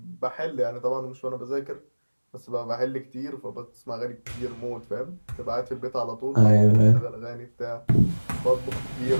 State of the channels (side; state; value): both; inverted; correlation -1.00